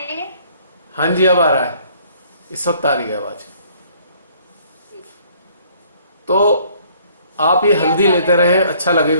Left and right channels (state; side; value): inverted; both; correlation -0.60